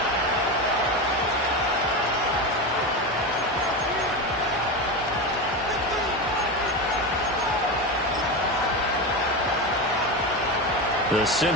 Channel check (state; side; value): normal; both; correlation 0.19